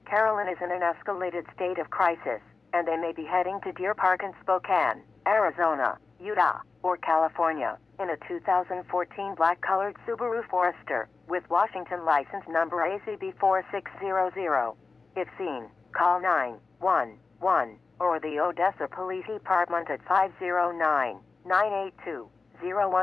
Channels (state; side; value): quieter; right; 4.2 dB